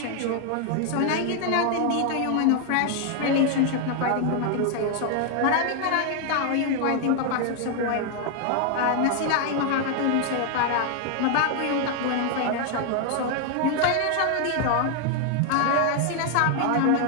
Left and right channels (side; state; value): both; different; correlation 0.00